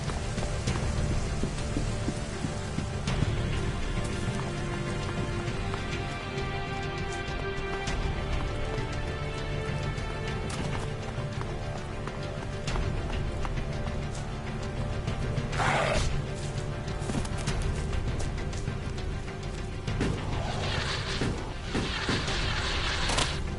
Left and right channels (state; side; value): identical; both; correlation 1.00